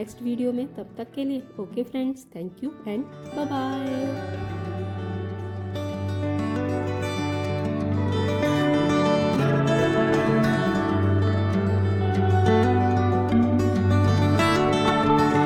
वीडियो में, तब तक के लिए okay friends, thank you and bye bye.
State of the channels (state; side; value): identical; both; correlation 1.00